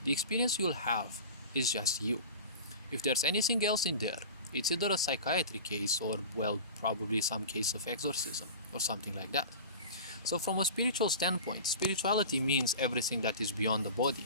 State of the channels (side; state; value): both; inverted; correlation -0.35